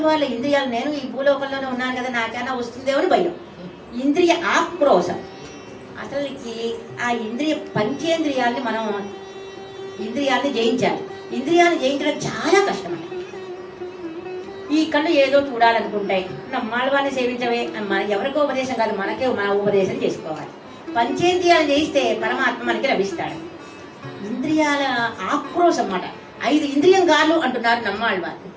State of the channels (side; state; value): both; identical; correlation 1.00